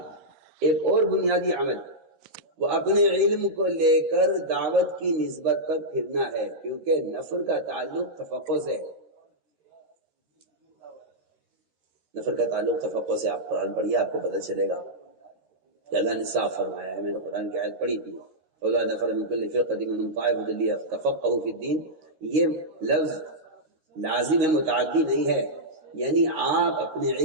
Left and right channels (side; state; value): left; late; 13 ms